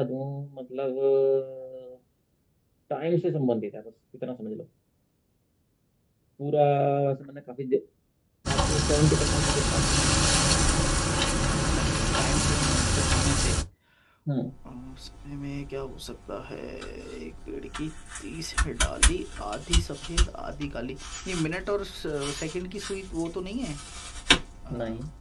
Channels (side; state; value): both; identical; correlation 1.00